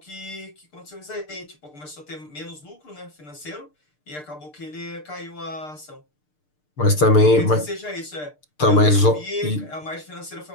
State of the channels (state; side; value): late; right; 6.7 ms